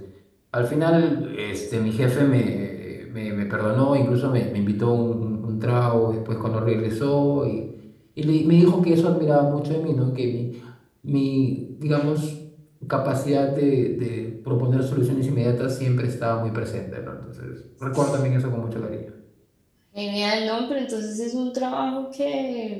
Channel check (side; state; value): both; identical; correlation 1.00